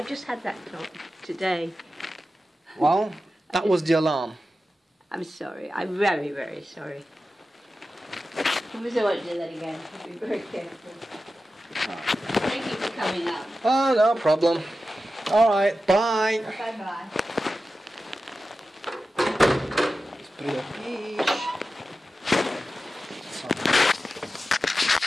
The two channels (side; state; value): both; normal; correlation 0.93